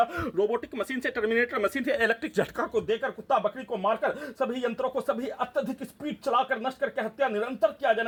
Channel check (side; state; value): both; identical; correlation 1.00